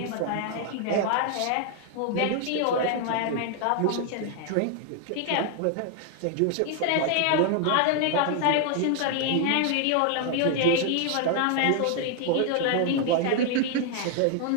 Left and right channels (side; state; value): both; different; correlation 0.00